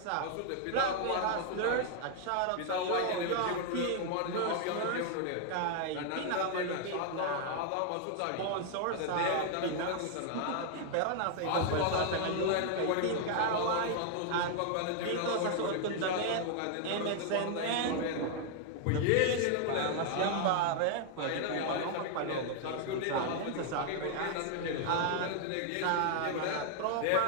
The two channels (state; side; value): different; both; correlation 0.00